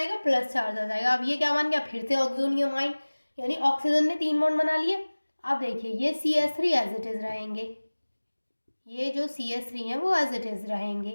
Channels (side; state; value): both; inverted; correlation -1.00